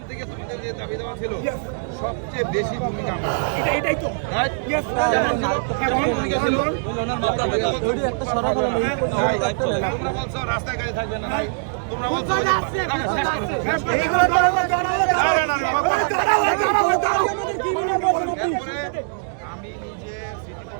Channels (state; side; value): silent; left; digital silence